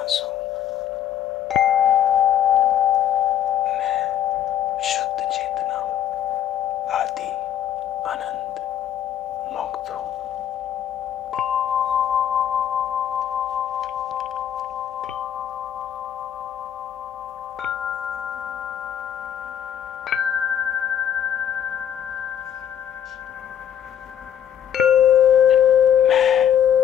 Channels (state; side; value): quieter; right; 9.9 dB